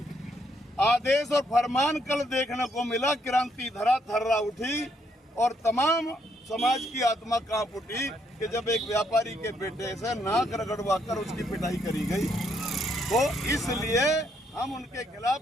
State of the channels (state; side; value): normal; both; correlation 0.73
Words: आदेश और फरमान कल देखने को मिला। क्रांति धरा थर्रा उठी और तमाम समाज की आत्मा कांप उठी कि जब एक व्यापारी के बेटे से नाक रगड़वा कर उसकी पिटाई करी गई। तो इसलिए हम उनके